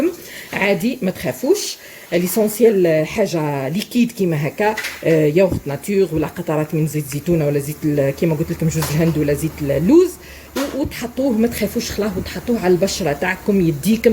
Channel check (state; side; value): identical; both; correlation 1.00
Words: عادي، ما تخافوش. ليسونسيال حاجه ليكيد كيما هكا، ياغورت ناتور ولا قطرات من زيت زيتونه ولا زيت كيما قلت لكم جوز الهند ولا زيت اللوز، وتحطوه ما تخافوش خلاه، وتحطوه على البشره تاعكم